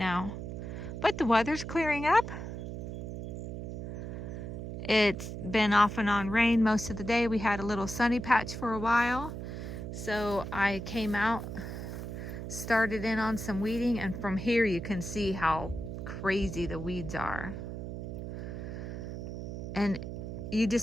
But the weather's clearing up. It's been off and on rain most of the day. We had a little sunny patch for a while. So I came out, started in on some weeding, and from here you can see how crazy the weeds are. And you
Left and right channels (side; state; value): right; noise; hum, 7 dB below the sound